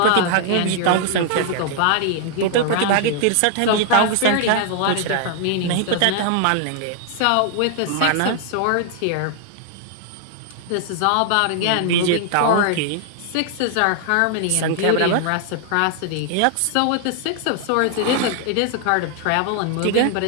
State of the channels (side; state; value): both; different; correlation 0.00